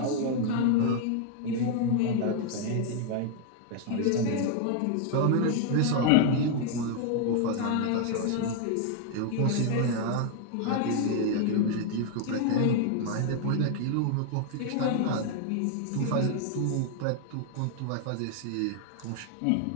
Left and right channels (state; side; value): different; both; correlation 0.00